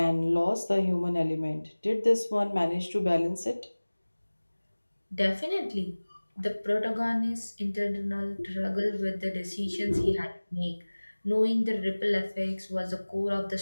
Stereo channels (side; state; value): both; inverted; correlation -1.00